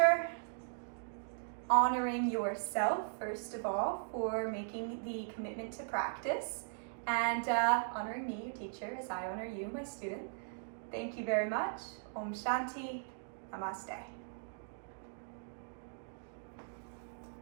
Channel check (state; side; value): silent; left; digital silence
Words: Honoring yourself, first of all, for making the commitment to practice. and honoring me, your teacher, as I honor you, my student. Thank you very much. Om Shanti. Namaste.